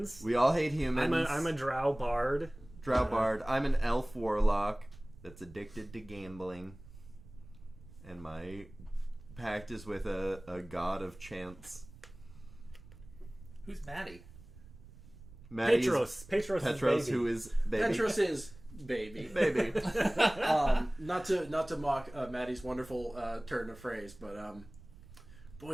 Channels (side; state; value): right; noise; rumble, 19 dB below the sound